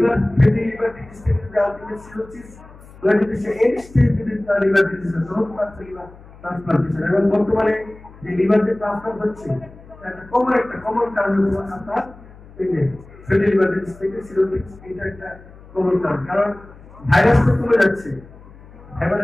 ডিজিজ থেকে যদি আলটিমেট সিরোসিস হয় যদি সে এন্ড স্টেজ যদি তার লিভার ডিজিজ হয় তখন তার লিভার ট্রান্সপ্লান্টেশন। এবং বর্তমানে যে লিভার যে ট্রান্সপ্লান্ট হচ্ছে একটা কমন কারণ হলো আপনার এই যে ফ্যাটি লিভার ডিজিজ থেকে সিরোসিস, এটা একটা কমন কারণ। কারণ ভাইরাস তো কমে যাচ্ছে,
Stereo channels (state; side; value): noise; left; hum, 21 dB below the sound